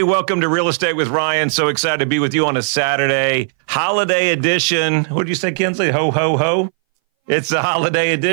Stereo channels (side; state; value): left; silent; 62 dB below the other